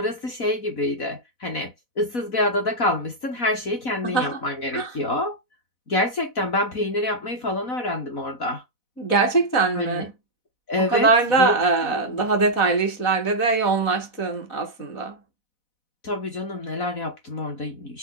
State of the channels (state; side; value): late; right; 4.0 ms